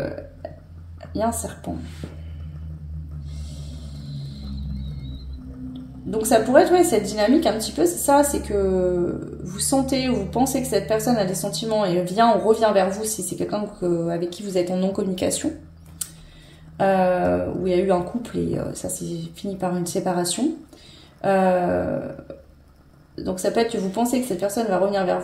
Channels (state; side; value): identical; both; correlation 1.00